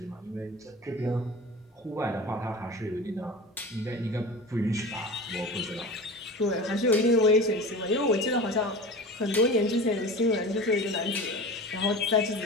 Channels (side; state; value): both; normal; correlation 0.33